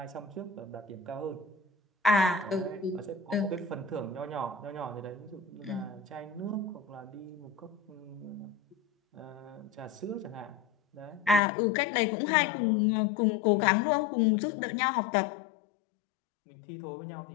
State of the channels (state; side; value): drops out; right; at 11.4 s